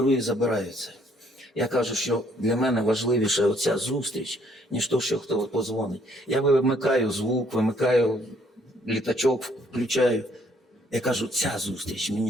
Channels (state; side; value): normal; both; correlation 0.65